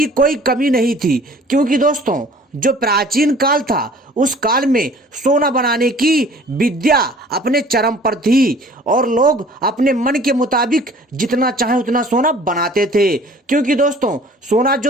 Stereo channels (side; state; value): both; normal; correlation 0.50